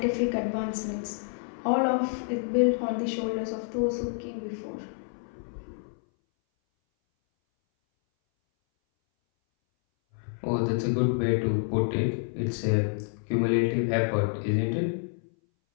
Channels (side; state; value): right; silent; 59 dB below the other